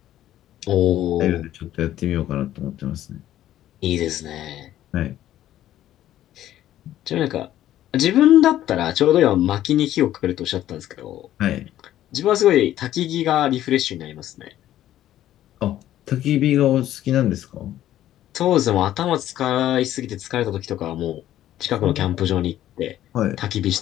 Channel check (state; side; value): quieter; right; 12.8 dB